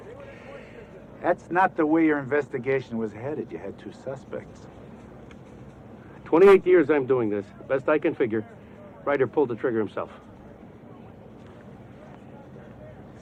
That's not the way your investigation was headed. You had 2 suspects. 28 years I'm doing this. Best I can figure, Ryder pulled the trigger himself.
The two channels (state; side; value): identical; both; correlation 1.00